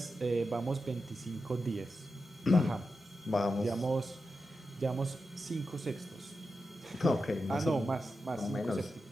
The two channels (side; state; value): both; normal; correlation 0.90